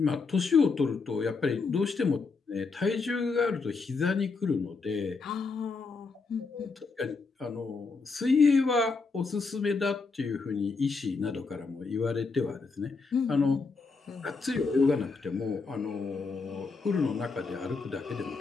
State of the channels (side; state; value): right; quieter; 4.4 dB